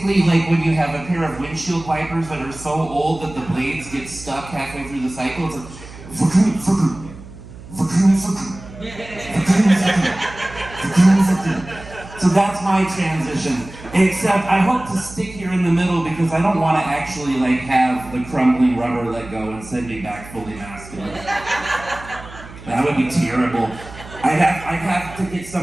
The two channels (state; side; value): noise; right; hum, 16 dB below the sound